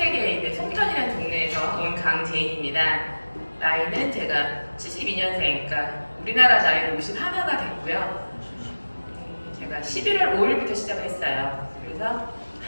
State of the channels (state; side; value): inverted; both; correlation -1.00